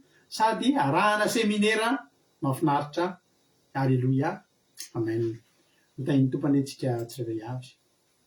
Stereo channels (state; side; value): identical; both; correlation 1.00